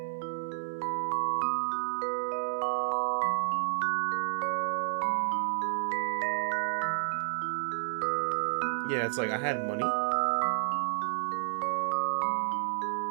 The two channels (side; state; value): left; silent; digital silence